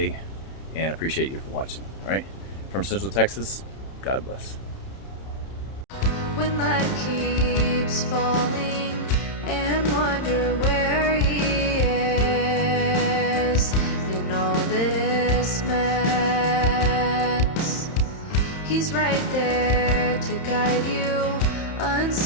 and appreciate you for watching. All right, from Central Texas, God bless. When life keeps falling and wonder where he is in all this mess, he's right there to guide you,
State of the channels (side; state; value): right; late; 31 ms